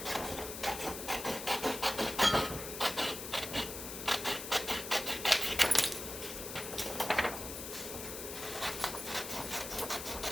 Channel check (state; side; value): noise; left; hiss, 8 dB below the sound